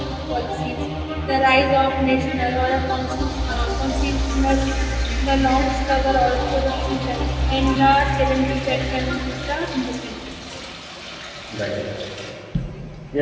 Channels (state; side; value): identical; both; correlation 1.00